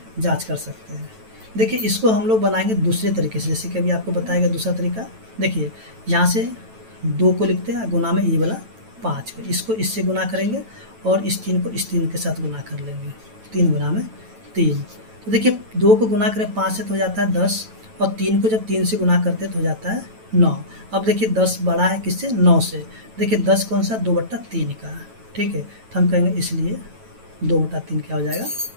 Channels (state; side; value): late; left; 9.1 ms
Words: जांच कर सकते हैं। देखिए इसको हम लोग बनाएंगे दूसरे तरीके से, जैसे कि अभी आपको बताएगा दूसरा तरीका। देखिए यहाँ से 2 को लिखते हैं गुना में ये वाला 5 को, इसको इससे गुना करेंगे और इस 3 को इस 3 के साथ गुना कर लेंगे, 3 गुना में 3। तो देखिए 2 को गुना करें 5 से तो हो जाता है 10, और 3 को जब 3 से गुना करते तो हो जाता है 9। अब देखिए 10 बड़ा है किससे, 9 से। देखिए 10 कौन सा, 2/3 का, ठीक है, तो हम कहेंगे इसलिए 2/3 क्या हो जाएगा,